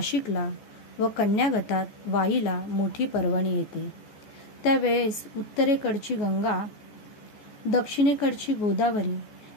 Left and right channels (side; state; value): right; late; 14 ms